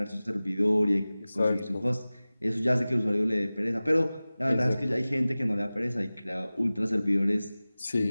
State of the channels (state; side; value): inverted; both; correlation -0.98